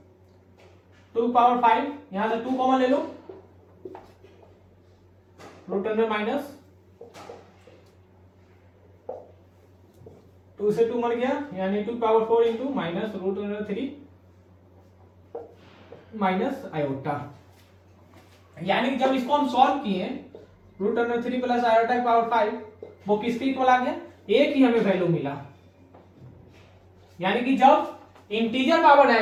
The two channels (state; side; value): identical; both; correlation 1.00